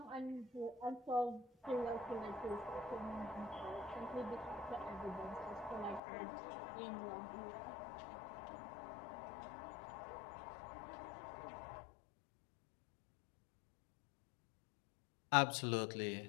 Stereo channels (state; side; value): drops out; right; at 6.0 s